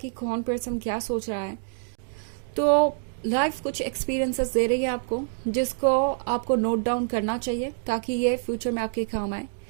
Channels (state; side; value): silent; left; digital silence